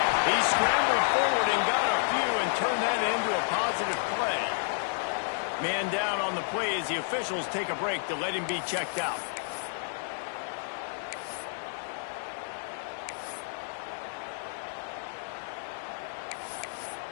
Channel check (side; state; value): right; silent; digital silence